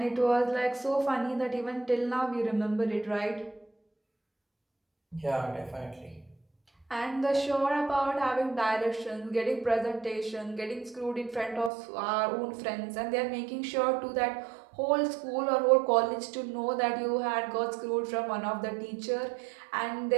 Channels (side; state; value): left; drops out; at 11.7 s